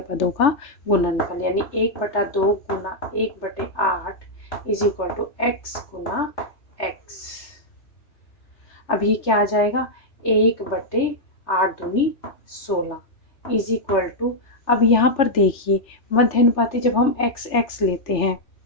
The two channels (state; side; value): late; right; 3.3 ms